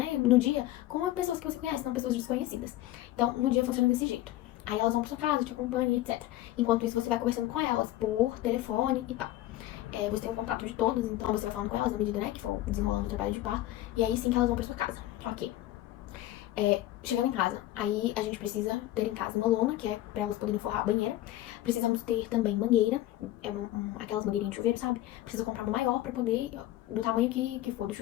no dia com pessoas que você conhece, não pessoas desconhecidas. Então, no dia funciona desse jeito. Aí elas vão pra sua casa, te acompanham, etc. Enquanto isso, você vai conversando com elas por telefone e tal. Você tem um contato de todas, então você vai falando com elas na medida, né, que for desenrolando o trabalho de parto. E aí sim que elas vão pra sua casa. Ok. Chegando em casa, aí a gente precisa ter em casa uma lona, que é pra elas poderem forrar a banheira. Precisamos ter também mangueira, aquelas mangueirinhas de chuveiro, sabe? Precisa comprar uma maior pra poder, do tamanho que for, do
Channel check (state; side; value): quieter; right; 15.1 dB